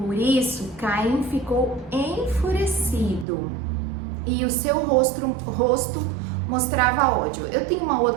isso, Caim ficou enfurecido e o seu rosto mostrava ódio. Eu tenho uma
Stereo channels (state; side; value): drops out; left; at 3.2 s